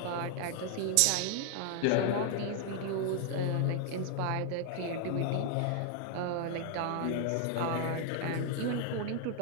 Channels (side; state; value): both; different; correlation 0.00